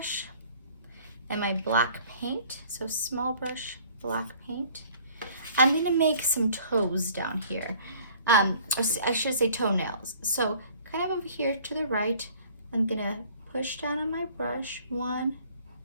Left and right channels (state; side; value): inverted; both; correlation -0.53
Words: and my black paint. So small brush, black paint. I'm gonna make some toes down here. Or I should say toenails. So kind of over here to the right, I'm gonna push down on my brush. 1,